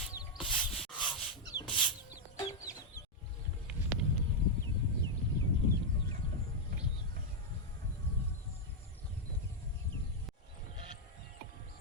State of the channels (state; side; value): normal; both; correlation -0.03